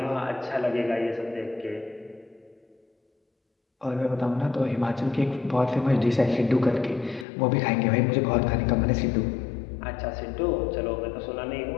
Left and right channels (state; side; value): drops out; right; at 7.2 s